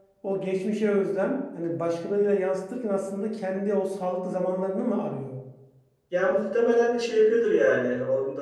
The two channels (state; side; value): identical; both; correlation 1.00